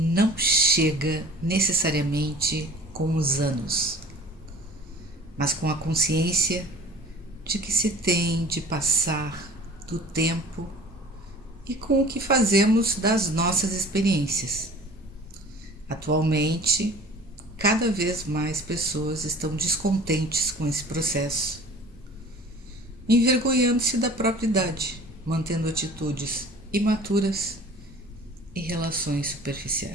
chega necessariamente com os anos, mas com a consciência de que se tem de passar do tempo e com o que fazemos das nossas experiências. Atualmente, cada vez mais pessoas estão descontentes com esse processo, envergonhando-se da própria idade, mantendo atitudes imaturas e relações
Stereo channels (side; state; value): both; normal; correlation 0.45